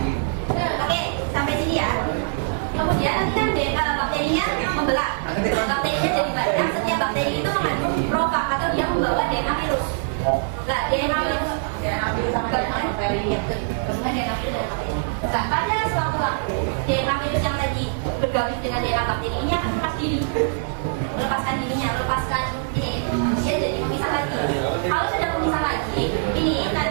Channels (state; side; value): silent; left; 63 dB below the other